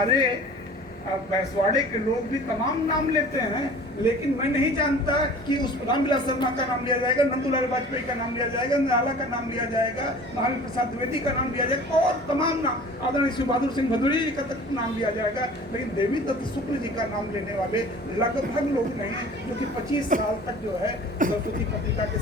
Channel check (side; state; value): both; normal; correlation 0.44